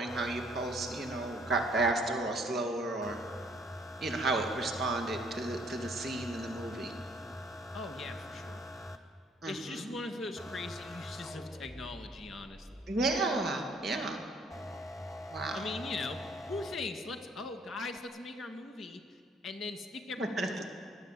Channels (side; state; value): both; normal; correlation 0.63